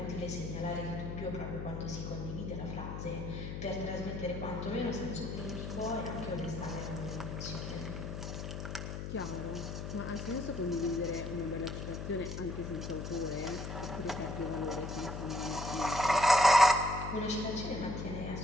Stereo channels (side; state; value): left; noise; hum, 5 dB below the sound